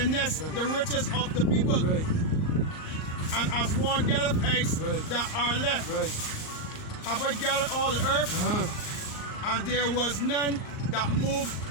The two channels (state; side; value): late; right; 38 ms